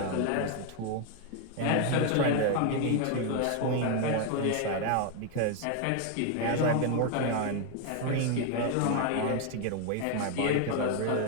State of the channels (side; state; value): both; different; correlation 0.01